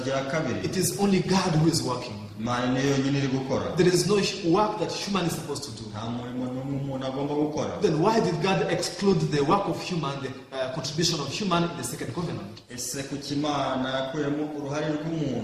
rya kabiri, it is only God who is working. Imana niyo yonyine iri gukora, There is no work that human is supposed to do. nta murimo n'umwe umuntu agomba gukora. Then why did God exclude the work of human, the contribution of human in the second covenant? ese kuki Imana yakuyemo uruhare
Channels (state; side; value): identical; both; correlation 1.00